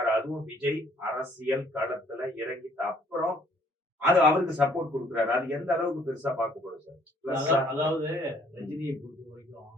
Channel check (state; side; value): normal; both; correlation 0.62